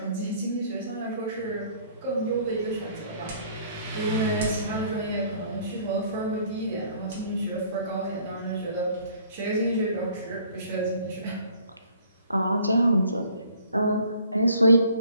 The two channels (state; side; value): inverted; both; correlation -0.57